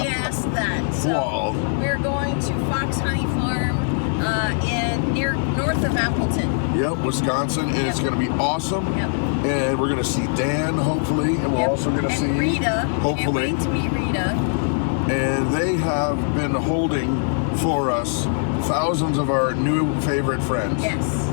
that. So Wow. we're going to Fox Honey Farm near north of Appleton. Yep, Wisconsin, and it's going to be awesome. Yep. And we're going to see Dan, hopefully, and we're Yep. also going to and see Rita. hopefully. Can't wait to meet Rita. And they have been holding for us thousands of our new favorite friends. Yes,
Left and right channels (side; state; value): right; silent; 64 dB below the other